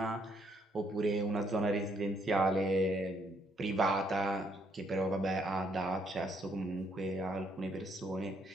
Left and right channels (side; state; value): both; normal; correlation 0.71